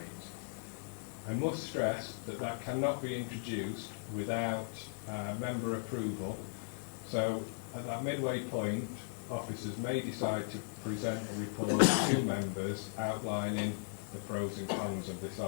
I must stress that that cannot be introduced without member approval. So at that midway point, officers may decide to present a report to members outlining the pros and cons of this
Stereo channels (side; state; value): right; silent; digital silence